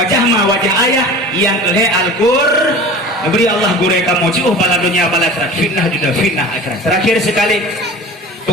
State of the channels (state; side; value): normal; both; correlation 0.38